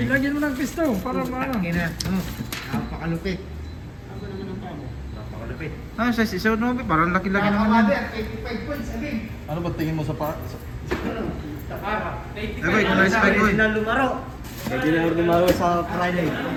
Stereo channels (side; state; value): both; identical; correlation 1.00